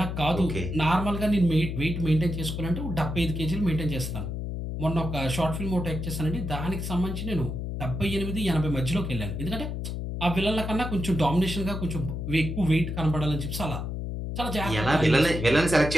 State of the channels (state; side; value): noise; left; hum, 4 dB below the sound